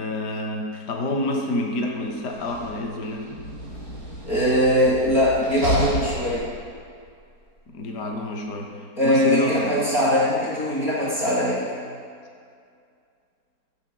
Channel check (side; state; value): right; late; 4.3 ms